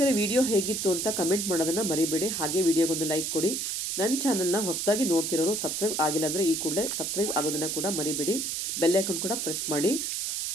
ವಿಡಿಯೋ ಹೇಗಿತ್ತು ಅಂತ ಕಮೆಂಟ್ ಮಾಡೋದನ್ನ ಮರಿಬೇಡಿ. ಹಾಗೆ ವಿಡಿಯೋಗೊಂದು ಲೈಕ್ ಕೊಡಿ. ನನ್ನ ಚಾನಲ್ನ ಹೊಸದಾಗಿ ನೋಡ್ತಿರೋರು ಸಬ್ಸ್ಕ್ರೈಬ್ ಆಗಿಲ್ಲ ಅಂದರೆ ಈ ಕೂಡಲೇ ಸಬ್ಸ್ಕ್ರೈಬ್ ಆಗೋದನ್ನ ಕೂಡ ಮರಿಬೇಡಿ. ಬೆಲ್ ಐಕಾನ್ ಕೂಡ ಪ್ರೆಸ್ ಮಾಡಿ.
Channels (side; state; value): right; noise; hiss, 1 dB below the sound